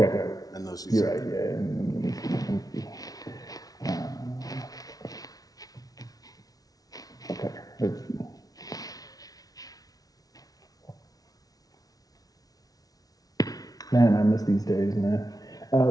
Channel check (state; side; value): late; right; 0.18 ms